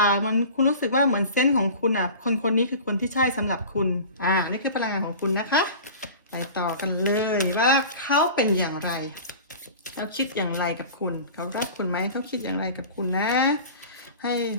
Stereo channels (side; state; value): both; inverted; correlation -0.38